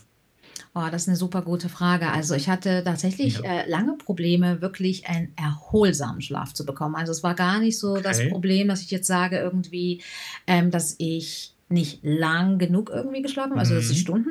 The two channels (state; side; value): identical; both; correlation 1.00